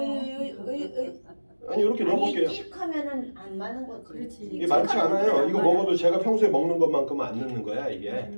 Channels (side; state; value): both; inverted; correlation -1.00